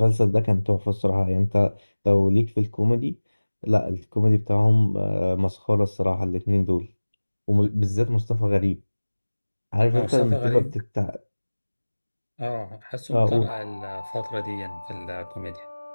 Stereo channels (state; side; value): inverted; both; correlation -1.00